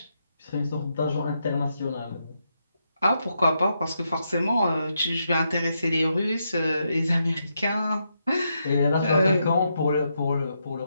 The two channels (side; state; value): both; inverted; correlation -0.81